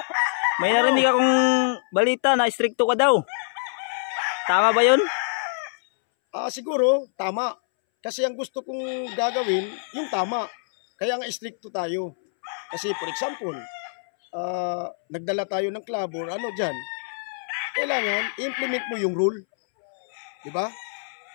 May narinig akong balita na stricto ka daw. Tama ba yun? Siguro, tama. Kasi ang gusto kong gagawin, yung tama. Kaya nga stricto tayo. Kasi for example, nagdala tayo ng club or ano dyan, kailangan i-implement mo yung rule. Diba?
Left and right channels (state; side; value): silent; right; 62 dB below the other